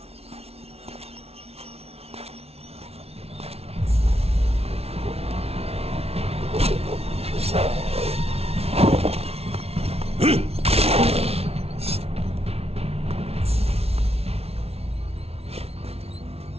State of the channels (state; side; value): late; left; 0.30 ms